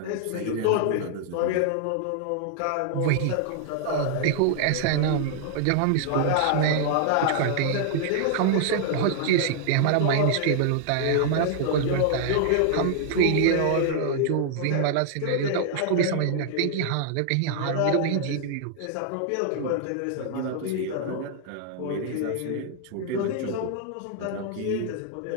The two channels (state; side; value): different; both; correlation 0.00